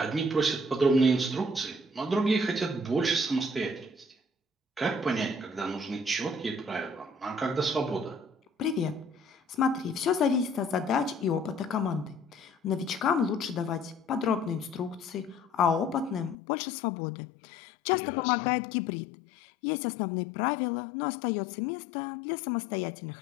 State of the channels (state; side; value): drops out; right; at 16.4 s